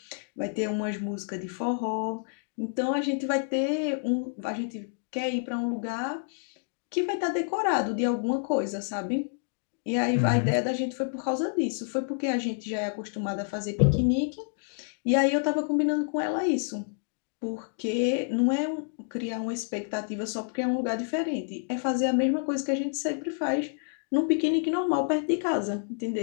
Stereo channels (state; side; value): silent; right; digital silence